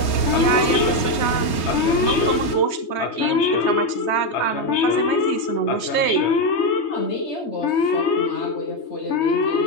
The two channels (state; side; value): late; right; 3.2 ms